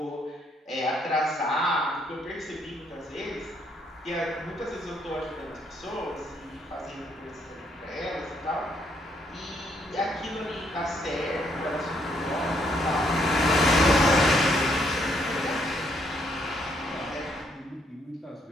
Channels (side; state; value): both; normal; correlation 0.71